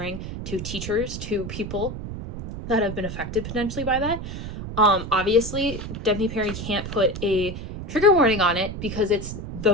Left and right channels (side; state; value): right; noise; rumble, 8 dB below the sound